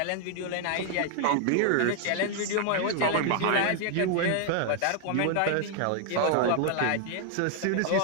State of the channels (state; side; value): different; both; correlation 0.00